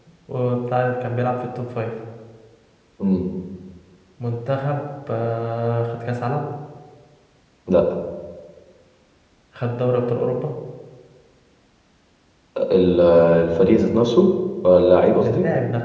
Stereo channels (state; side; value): identical; both; correlation 1.00